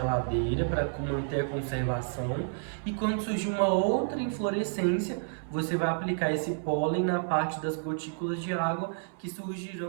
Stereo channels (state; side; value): silent; left; 58 dB below the other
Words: para manter a conservação. E quando surgir uma outra inflorescência, você vai aplicar esse pólen na parte das gotículas de água que